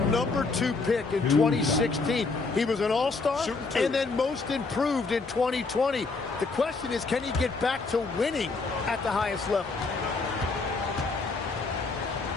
pick in 2016. He was an all-star and then most improved in 2020. The question is, can he get back to winning at the highest level?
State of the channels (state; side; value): quieter; right; 4.0 dB